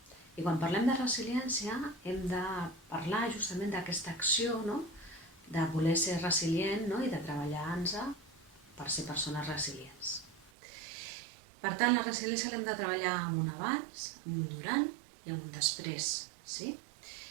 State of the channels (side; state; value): left; drops out; at 10.5 s